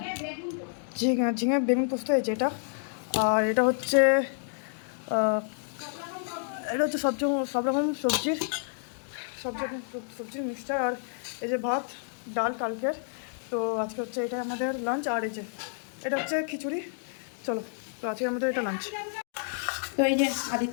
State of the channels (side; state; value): right; silent; digital silence